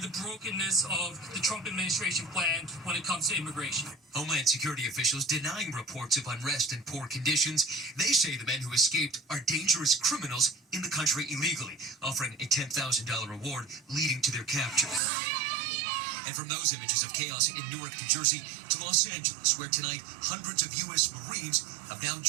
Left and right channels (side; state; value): left; drops out; at 15.0 s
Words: brokenness of the Trump administration plan when it comes to immigration. Homeland Security officials denying reports of unrest and poor conditions. They say the men who escaped are dangerous criminals in the country illegally, offering a $10,000 reward leading to their capture. And from those images of chaos in Newark, New Jersey, to Los Angeles, where tonight hundreds of U.S. Marines have now